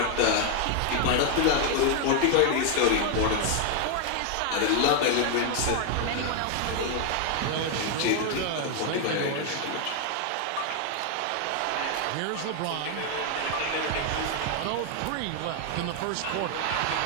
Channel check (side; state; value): both; different; correlation 0.00